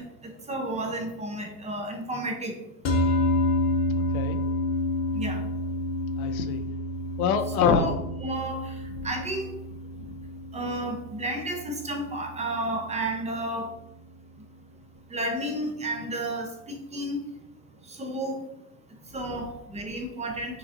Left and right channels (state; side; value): normal; both; correlation 0.00